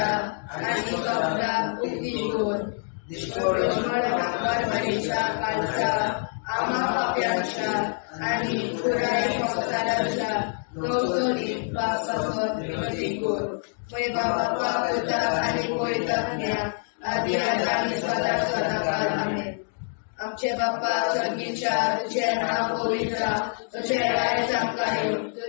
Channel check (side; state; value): right; silent; 61 dB below the other